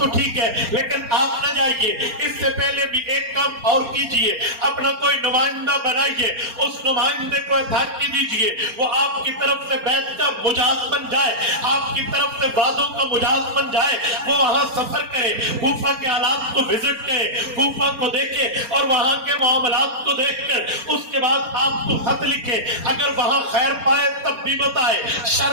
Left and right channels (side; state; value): left; late; 4.3 ms